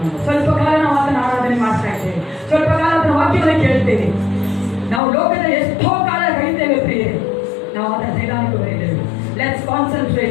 ಸ್ವಲ್ಪ ಕಾಲ ನಾವು ಆತನ ಆರಾಧನೆ ಮಾಡ್ತಾ ಇದ್ದೇವೆ, ಸ್ವಲ್ಪ ಕಾಲ ಆತನ ವಾಕ್ಯವನ್ನು ಕೇಳ್ತೇವೆ. ನಾವು ಲೋಕದ ಎಷ್ಟೋ ಕಾಲ ಕಳೀತೇವೆ ಪ್ರಿಯರೇ, ನಾವು ಆತನ ಸನ್ನಿಧಾನಕ್ಕೆ ಬರೀತೇವೆ. Let's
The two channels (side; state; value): right; drops out; at 5.0 s